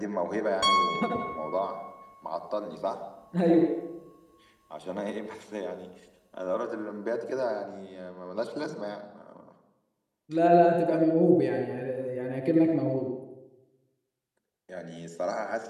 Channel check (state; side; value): identical; both; correlation 1.00